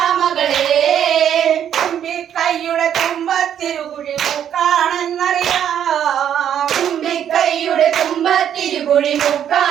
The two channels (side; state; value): left; quieter; 9.6 dB